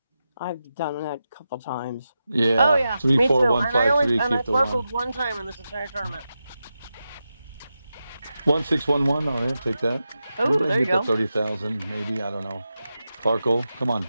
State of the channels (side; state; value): both; inverted; correlation -0.90